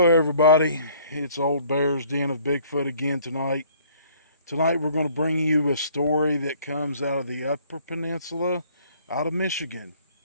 everybody. It's Old Bear's Den of Bigfoot again tonight. Tonight, we're going to bring you a story that comes out of the Upper Peninsula, out of Michigan,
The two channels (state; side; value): inverted; both; correlation -0.58